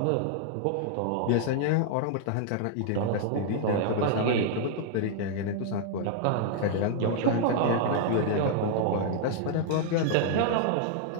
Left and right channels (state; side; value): different; both; correlation -0.01